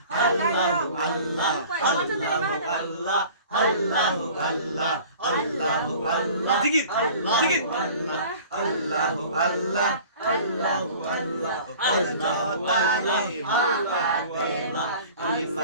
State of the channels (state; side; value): inverted; both; correlation -0.45